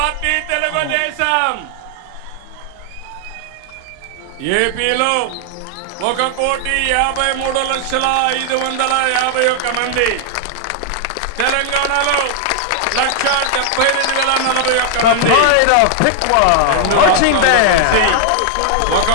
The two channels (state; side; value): different; both; correlation 0.00